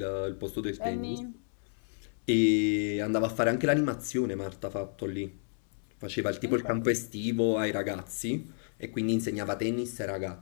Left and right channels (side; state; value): right; silent; digital silence